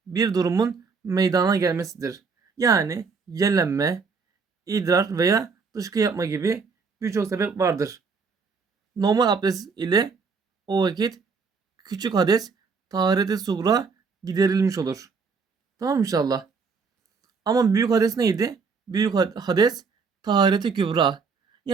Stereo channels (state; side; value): quieter; left; 5.0 dB